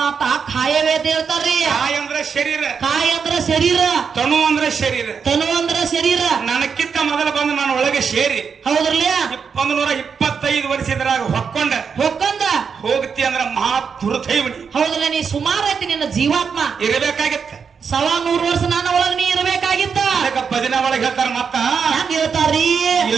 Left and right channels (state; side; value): quieter; left; 6.2 dB